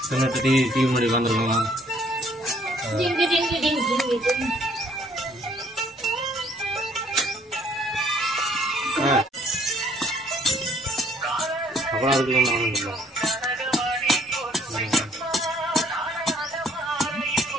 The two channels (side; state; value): both; normal; correlation 0.63